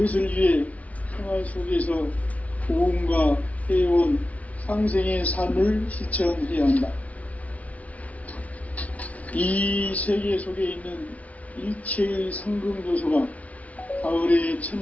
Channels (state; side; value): late; right; 0.069 ms